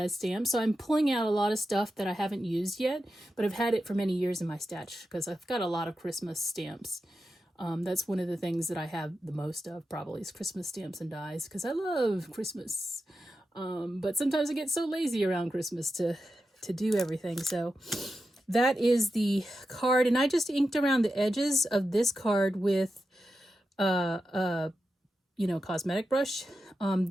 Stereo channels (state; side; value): normal; both; correlation 0.90